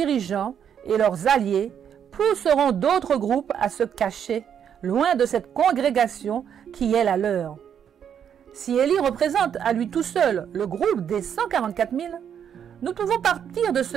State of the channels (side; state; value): left; quieter; 8.5 dB